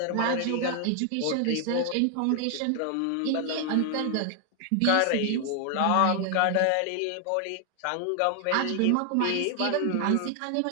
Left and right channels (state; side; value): different; both; correlation 0.00